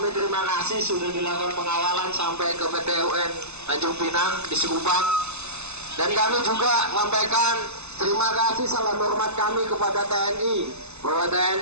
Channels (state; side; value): late; left; 0.81 ms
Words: terima kasih sudah dilakukan pengawalan sampai ke PT UN Tanjung Pinang di Sikupang. Dan kami juga sampaikan terima kasih salam hormat kami kepada TNI, bahwa